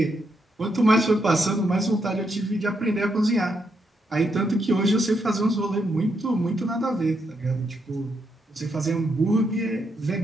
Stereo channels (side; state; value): both; normal; correlation 0.79